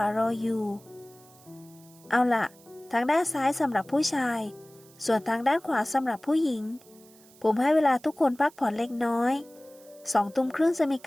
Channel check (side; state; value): right; noise; hiss, 26 dB below the sound